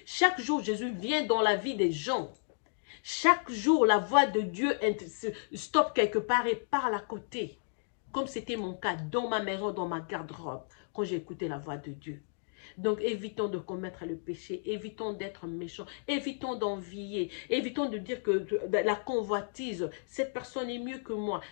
chaque jour, Jésus vient dans la vie des gens. Chaque jour, la voix de Dieu stoppe quelque part et parle à côté. Comme c'était mon cas dans ma maison, dans ma garde-robe, quand j'ai écouté la voix de Dieu. Donc, évitons de commettre le péché, évitons d'être méchants, évitons d'envier, évitons de dire que la convoitise, cette personne est mieux que moi,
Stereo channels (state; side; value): silent; right; digital silence